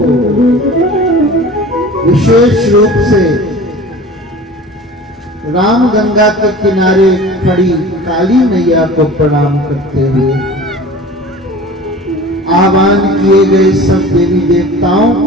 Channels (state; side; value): normal; both; correlation 0.40